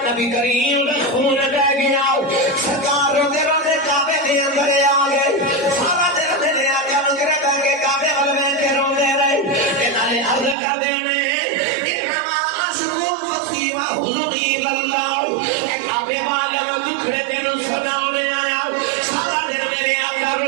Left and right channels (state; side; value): drops out; left; at 10.6 s